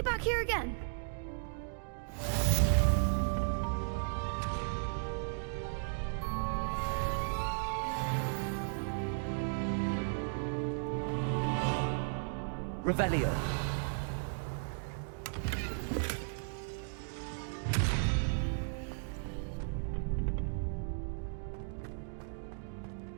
back here again. Revelio.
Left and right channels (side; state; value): left; silent; digital silence